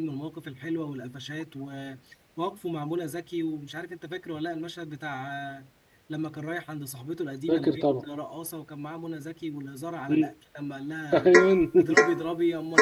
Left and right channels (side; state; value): both; identical; correlation 1.00